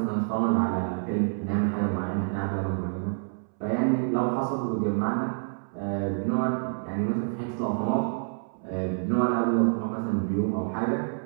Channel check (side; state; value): left; silent; 60 dB below the other